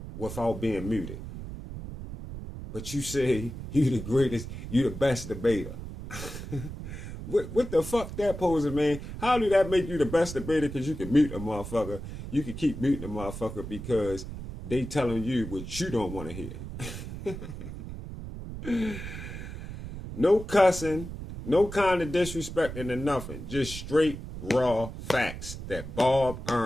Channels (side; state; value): right; noise; rumble, 9 dB below the sound